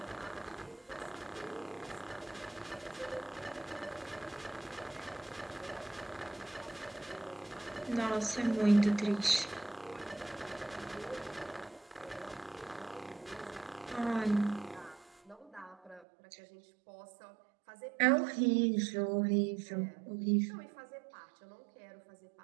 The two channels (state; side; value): drops out; left; at 16.1 s